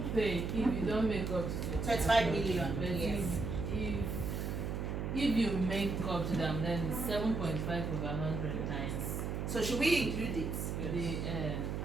pay if you don't make up to 25 million. But Yes. if you make up to them, then it's 7.5 over 100 times. So should we include it? The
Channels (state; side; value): noise; right; hum, 2 dB below the sound